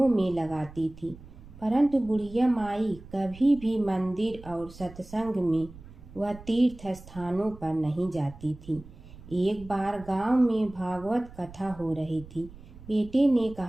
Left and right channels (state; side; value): noise; right; rumble, 18 dB below the sound